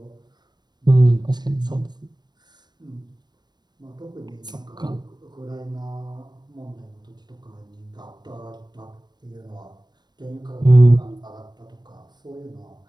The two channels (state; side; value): late; left; 0.21 ms